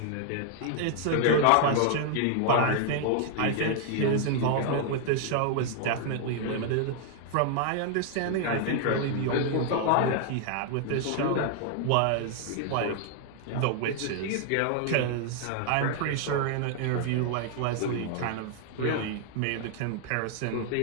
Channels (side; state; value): both; different; correlation 0.00